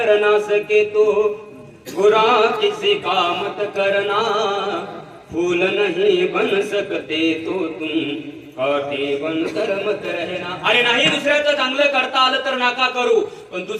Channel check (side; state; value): both; identical; correlation 1.00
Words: सके तो बुरा किसी का मत करना, फूल नहीं बन सकते तो तुम काटे बनकर मत रहना. अरे नाही दुसऱ्याचं चांगलं करता आलं तर नका करू, पण